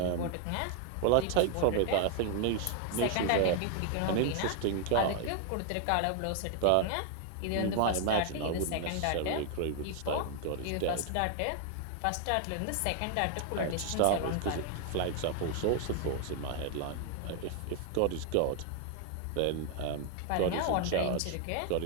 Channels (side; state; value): both; different; correlation 0.00